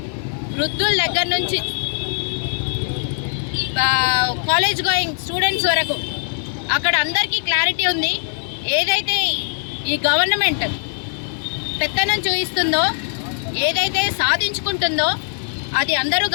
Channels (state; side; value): silent; right; digital silence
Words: వృద్ధుల దగ్గర నుంచి కాలేజ్ గోయింగ్ స్టూడెంట్స్ వరకు అక్కడ అందరికీ క్లారిటీ ఉంది. ఏదైతే ఈ గవర్నమెంట్ పెత్తనం చూపిస్తుందో, ఏదైతే సాధించుకుంటుందో అది అందరూ